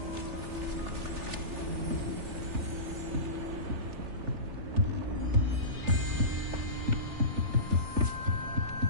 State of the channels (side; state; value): left; late; 3.4 ms